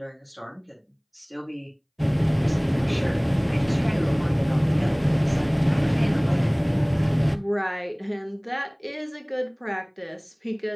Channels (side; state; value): both; identical; correlation 1.00